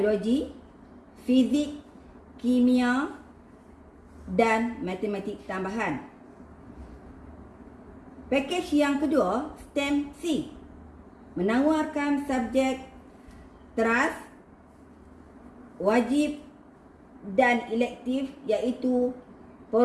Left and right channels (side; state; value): both; identical; correlation 1.00